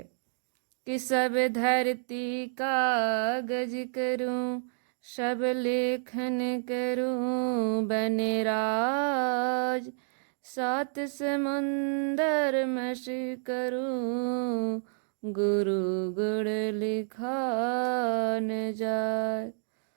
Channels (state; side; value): silent; left; digital silence